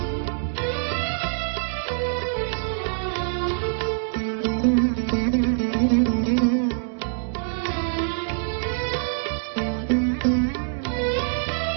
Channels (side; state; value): left; silent; digital silence